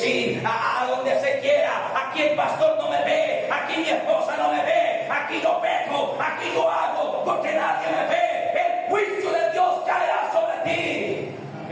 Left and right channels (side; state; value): both; identical; correlation 1.00